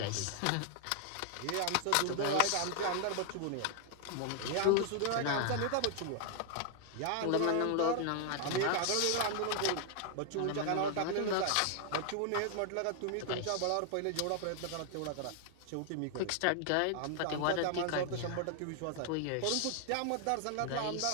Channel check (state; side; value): different; both; correlation 0.00